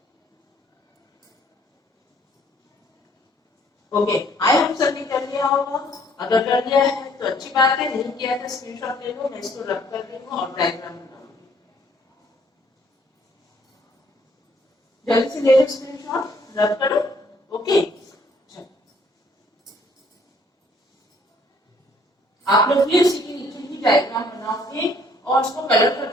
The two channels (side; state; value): both; normal; correlation 0.62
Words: ओके, आई होप सबने कर लिया होगा। अगर कर लिया है तो अच्छी बात है, नहीं किया तो स्क्रीनशॉट ले लो, मैं इसको रब कर दूंगा और डायग्राम बनाऊंगी। जल्दी से ले लो स्क्रीनशॉट, रब करो, ओके। आप लोग भी उसी के नीचे ही डायग्राम बनाओगे और उसको कलर कर